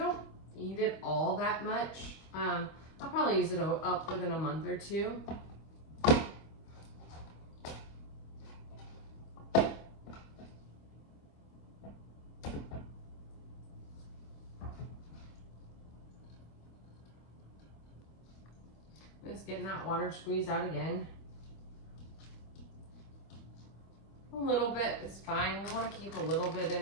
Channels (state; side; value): late; right; 25 ms